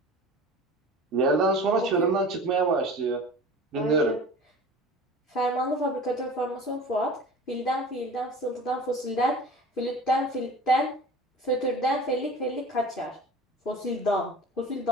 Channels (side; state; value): both; normal; correlation 0.39